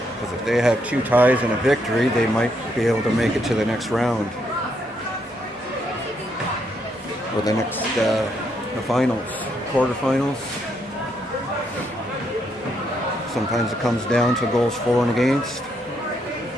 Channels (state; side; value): normal; both; correlation 0.76